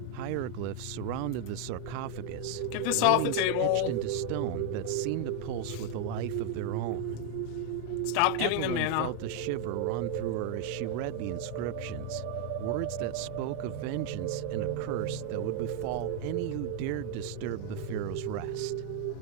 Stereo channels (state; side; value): different; both; correlation 0.00